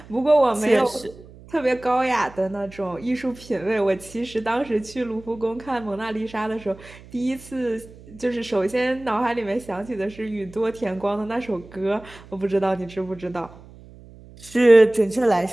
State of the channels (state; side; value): noise; right; hum, 20 dB below the sound